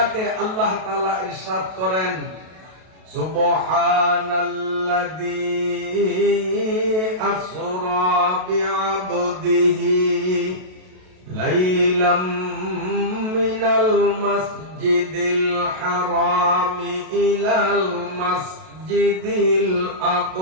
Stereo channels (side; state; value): left; late; 32 ms